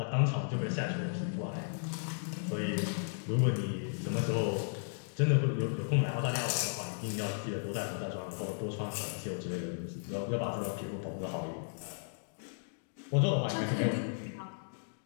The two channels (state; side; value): silent; right; digital silence